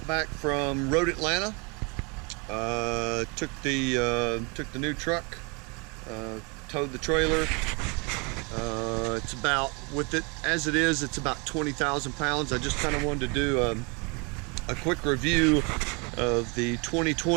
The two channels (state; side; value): quieter; left; 31.3 dB